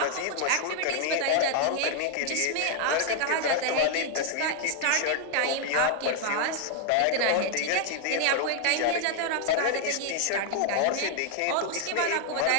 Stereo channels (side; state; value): both; different; correlation 0.00